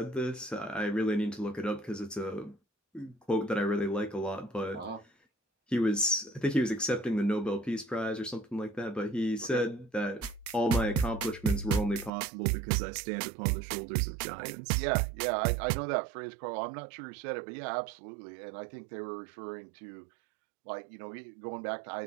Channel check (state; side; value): drops out; left; at 12.1 s